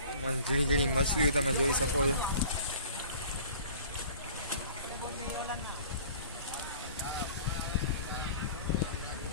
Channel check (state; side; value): inverted; both; correlation -0.46